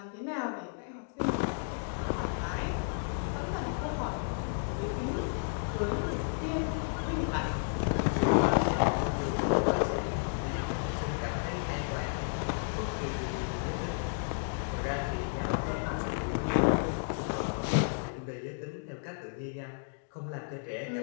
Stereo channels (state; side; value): silent; right; digital silence